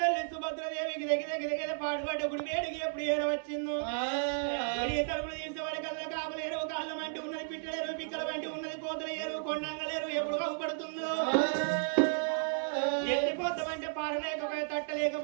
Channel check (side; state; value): left; silent; digital silence